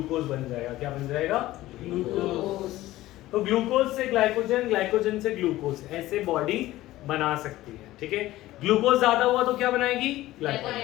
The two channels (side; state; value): right; quieter; 16.3 dB